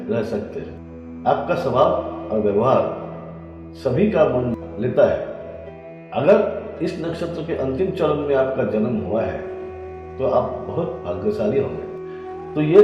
रह सकते हैं। आपका स्वभाव और व्यवहार सभी का मन लेता है। अगर इस नक्षत्र के अंतिम चरण में आपका जन्म हुआ है तो आप बहुत भाग्यशाली होंगे। तो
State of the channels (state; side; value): identical; both; correlation 1.00